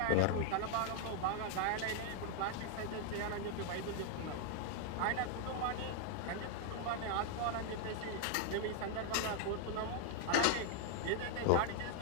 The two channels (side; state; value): both; different; correlation 0.00